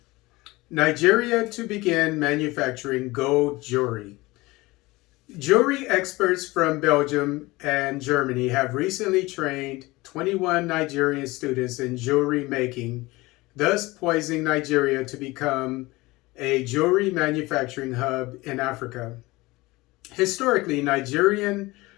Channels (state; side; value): quieter; right; 21.2 dB